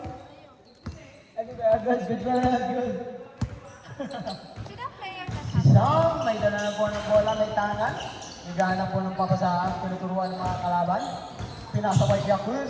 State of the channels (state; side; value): identical; both; correlation 1.00